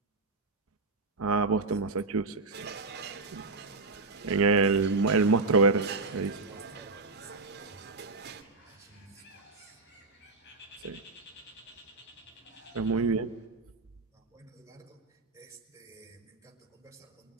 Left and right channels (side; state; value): left; quieter; 3.7 dB